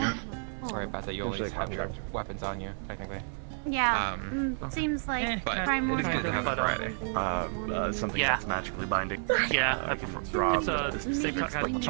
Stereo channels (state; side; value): silent; left; digital silence